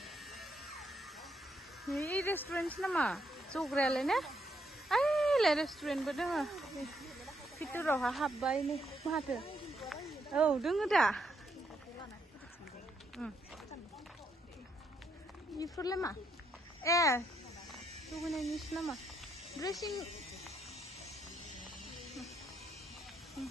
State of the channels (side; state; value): both; normal; correlation 0.76